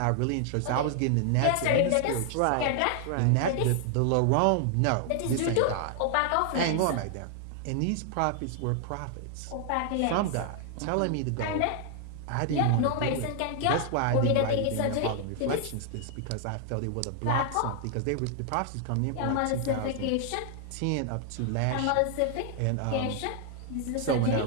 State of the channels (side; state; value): both; different; correlation 0.00